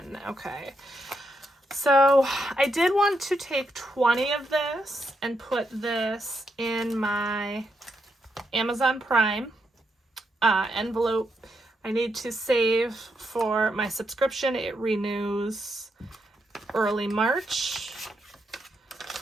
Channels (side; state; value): both; normal; correlation 0.81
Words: Okay. So I did want to take 20 of this and put this in my Amazon Prime envelope. I need to save for my subscription. It renews early March.